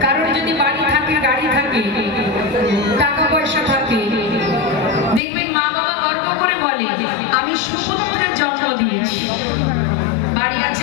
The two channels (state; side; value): drops out; right; at 5.2 s